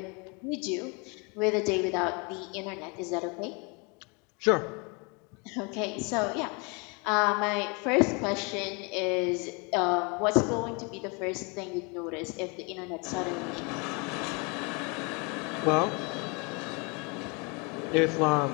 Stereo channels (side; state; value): right; quieter; 31.1 dB